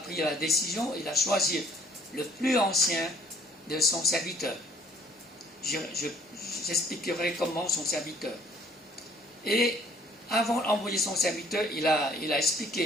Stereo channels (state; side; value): normal; both; correlation 0.59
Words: la décision, il a choisi le plus ancien de son serviteur. J'expliquerai comment son serviteur. Et avant d'envoyer son serviteur, il a